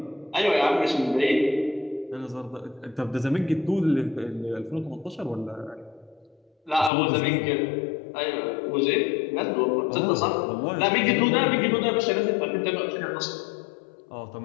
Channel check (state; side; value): drops out; right; at 6.9 s